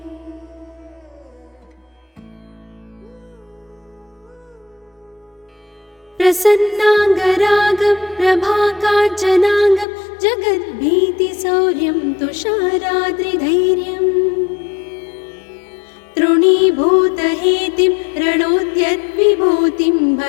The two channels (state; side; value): drops out; right; at 9.9 s